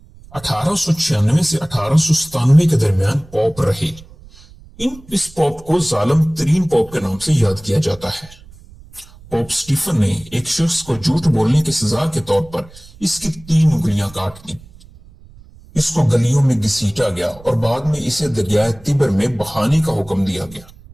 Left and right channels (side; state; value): right; noise; rumble, 22 dB below the sound